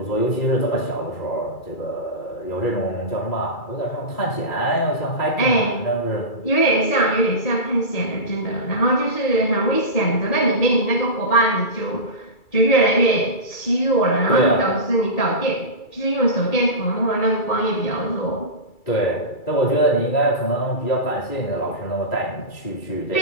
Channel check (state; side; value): late; right; 2.3 ms